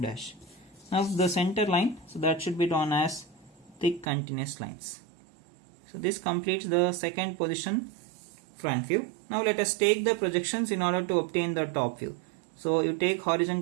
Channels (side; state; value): left; drops out; at 4.0 s